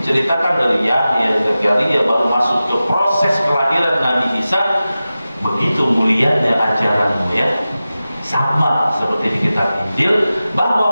dari Yahya, Zakaria baru masuk ke proses kelahiran Nabi Isa. Begitu mulianya ajaranmu ya, sama seperti di kitab Injil,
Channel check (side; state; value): both; inverted; correlation -0.95